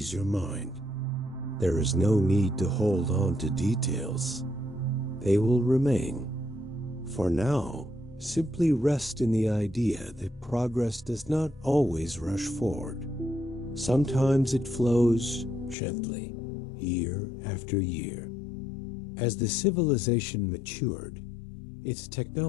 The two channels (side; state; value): right; drops out; at 15.8 s